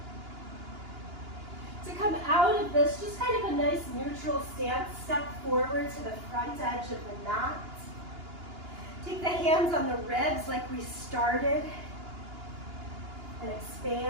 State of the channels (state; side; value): late; left; 2.9 ms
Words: To come out of this, just kind of a nice neutral stance. Step forward to the front edge of the mat. Take the hands on the ribs like we started and